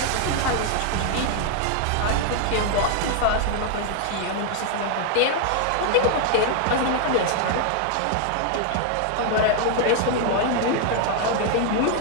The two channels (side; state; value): both; different; correlation 0.00